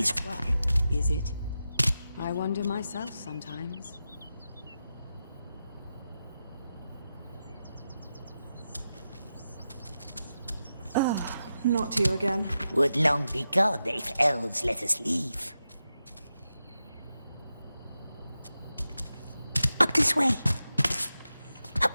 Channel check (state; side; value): inverted; both; correlation -0.90